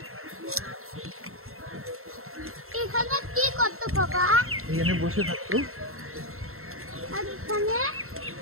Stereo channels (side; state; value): left; late; 0.62 ms